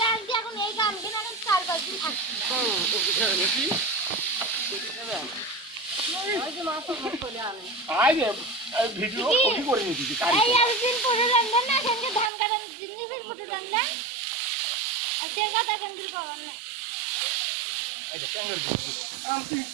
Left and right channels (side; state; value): left; drops out; at 12.3 s